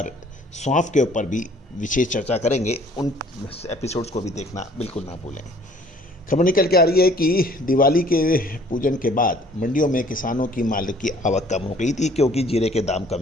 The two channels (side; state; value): both; normal; correlation 0.56